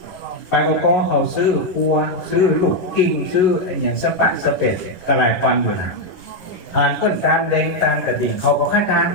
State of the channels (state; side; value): late; right; 11 ms